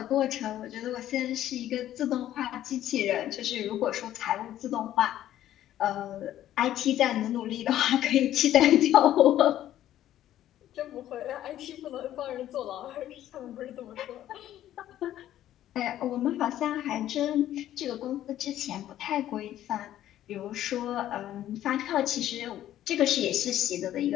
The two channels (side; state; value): right; quieter; 12.5 dB